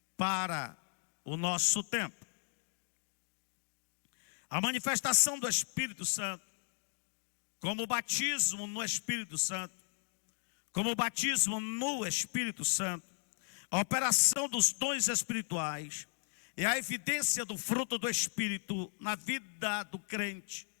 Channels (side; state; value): right; silent; digital silence